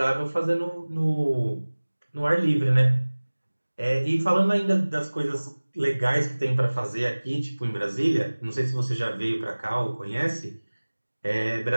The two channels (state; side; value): inverted; both; correlation -1.00